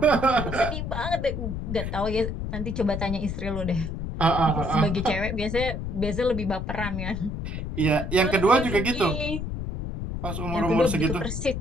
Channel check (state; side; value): noise; left; rumble, 4 dB below the sound